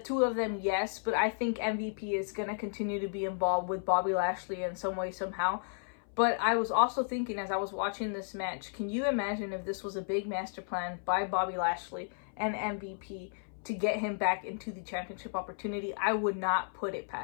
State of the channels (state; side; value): silent; right; 56 dB below the other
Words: of them, yes, but I think MVP is going to continue to be involved with Bobby Lashley in some way, somehow. But I was also thinking as I was watching this match, can you imagine if this was a big master plan by Bobby Lashley and MVP to get him back into the championship opportunity? I would not put it